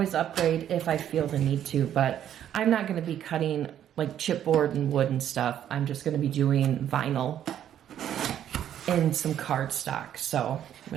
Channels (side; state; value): left; quieter; 10.4 dB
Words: upgrade if I feel the need to, but I'm not gonna be cutting like chipboard and wood and stuff. I'm just gonna be doing vinyl and some cardstock. So I'm